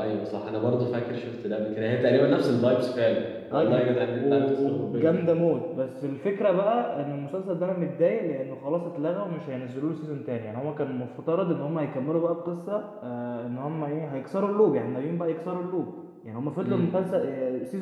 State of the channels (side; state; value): both; identical; correlation 1.00